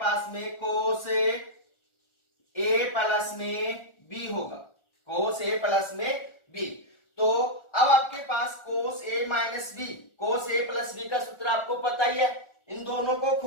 में, कोस ए प्लस में बी होगा, कोस ए प्लस में बी। तो अब आपके पास कोस ए माइनस बी, कोस ए प्लस बी का सूत्र आपको पता ही है, इन दोनों को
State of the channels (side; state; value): right; late; 1.4 ms